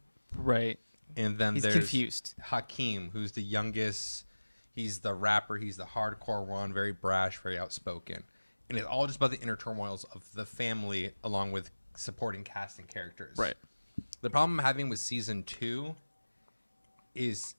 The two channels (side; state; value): both; inverted; correlation -1.00